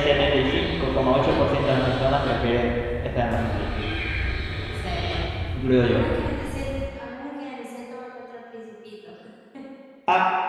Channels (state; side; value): identical; both; correlation 1.00